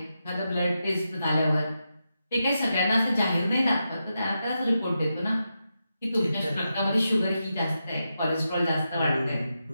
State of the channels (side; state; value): both; inverted; correlation -0.87